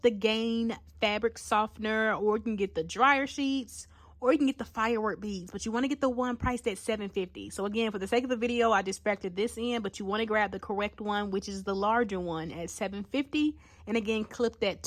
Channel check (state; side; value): identical; both; correlation 1.00